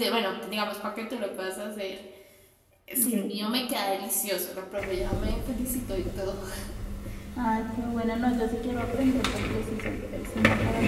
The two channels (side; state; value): both; identical; correlation 1.00